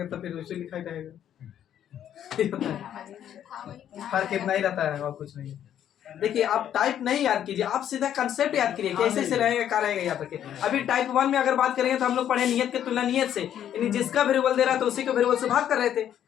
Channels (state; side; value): quieter; right; 10.3 dB